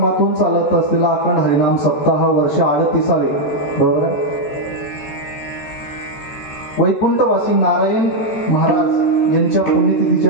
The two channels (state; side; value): late; right; 13 ms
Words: चालत असलेला अखंड हरिनाम सप्ताह वर्ष 38वे, बरोबर आहे. वैकुंठवासी नारायण महाराज यांच्या